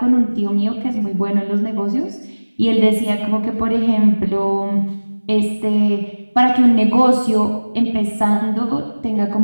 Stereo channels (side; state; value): both; inverted; correlation -1.00